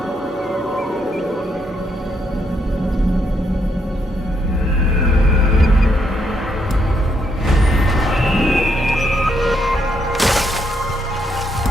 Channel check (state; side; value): normal; both; correlation 0.76